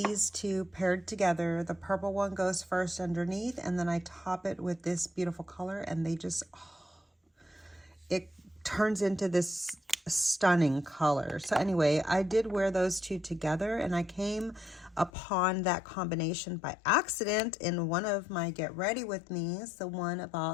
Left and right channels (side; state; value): right; drops out; at 15.1 s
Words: two paired together. The purple one goes first underneath, and then I top it with this beautiful color, and they just, it turns into this stunning color. So anyway, I did wear those two together, and I came upon that combination by accident in one of my Get Ready With Me's, the one